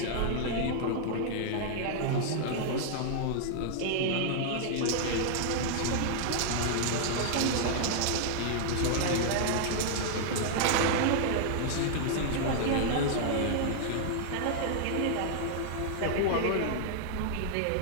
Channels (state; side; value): different; both; correlation -0.01